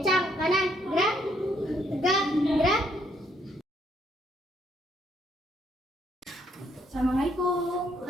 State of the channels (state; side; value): normal; both; correlation 0.70